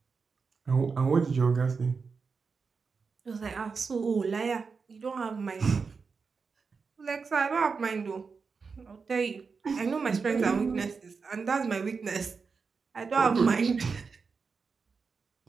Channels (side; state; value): left; quieter; 5.1 dB